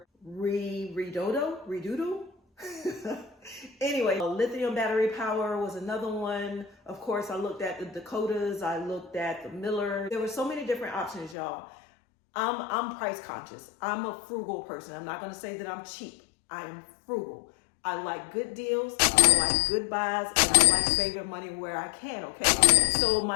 Redoodle. Anyway, Lithium battery power was another one. Of course, I looked at the Dakotas, I looked at the Miller. There were so many different options, y'all. I'm price conscious. I'm a frugal person. I'm not gonna say that I'm cheap. I am frugal. I like good deals, I like good buys, and I like saving money where I can, okay? So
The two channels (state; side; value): drops out; right; at 11.4 s